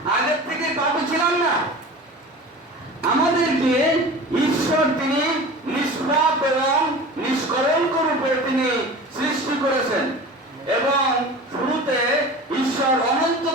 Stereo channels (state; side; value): normal; both; correlation 0.36